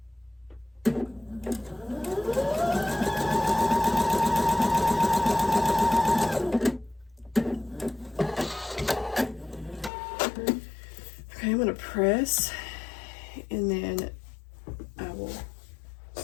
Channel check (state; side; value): drops out; right; at 9.9 s